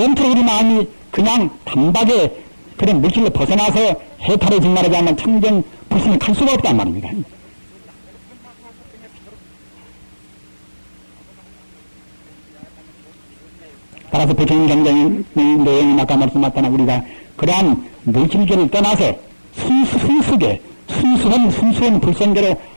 우리 마음이 그냥 단박에 그런 물질로 벗어나서 해탈을 말하지 않는 청정 불신을 갈 수가 없단 말입니다. 따라서 부처님 경전의 내용이 아까 말씀하셨다나 우리가 그러한 물질계를 떠나서 순수한 불성계로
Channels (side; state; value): both; inverted; correlation -1.00